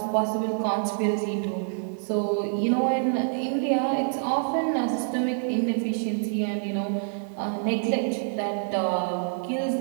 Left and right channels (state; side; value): silent; left; 58 dB below the other